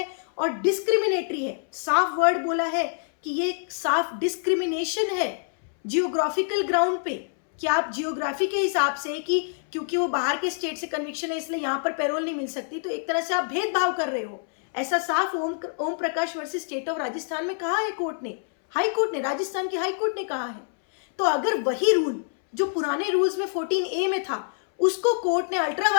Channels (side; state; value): right; silent; 61 dB below the other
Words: और डिस्क्रिमिनेटरी है। साफ वर्ड बोला है कि ये साफ डिस्क्रिमिनेशन है जियोग्राफिकल ग्राउंड पे, कि आप जियोग्राफी के हिसाब से कि क्योंकि वो बाहर के स्टेट से कन्विक्शन है इसलिए यहाँ पर पैरोल नहीं मिल सकती, तो एक तरह से आप भेदभाव कर रहे हो। ऐसा साफ Om Prakash versus state of Rajasthan में कहा है कोर्ट ने, हाई कोर्ट ने, राजस्थान की हाई कोर्ट ने कहा है। तो अगर वही रूल जो पुराने रूल्स में 14A में था, उसको कोर्ट ने अल्ट्रा